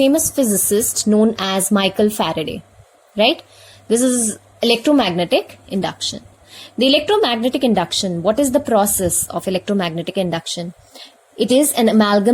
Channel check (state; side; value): identical; both; correlation 1.00